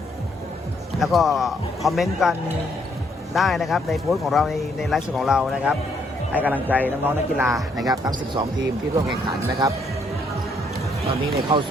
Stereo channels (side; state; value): both; normal; correlation 0.71